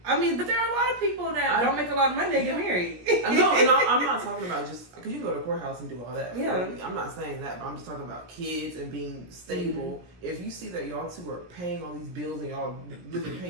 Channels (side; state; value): left; late; 17 ms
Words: I mean, but there are a lot of people that don't make a lot of money that get married. No, and I'm not talking about just because you can go to the courthouse and do all that. Yeah, I'm not saying that, but I'm just talking about kids and being stable. Mm-hmm. If you see that y'all two are paying all these bills and y'all living